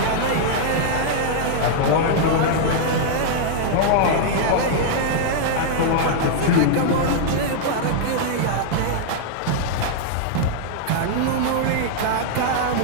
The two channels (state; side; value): different; both; correlation -0.01